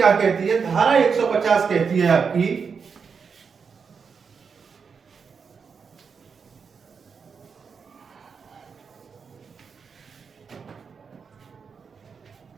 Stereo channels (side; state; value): left; quieter; 5.8 dB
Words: कहती है, धारा 150 कहती है आपकी,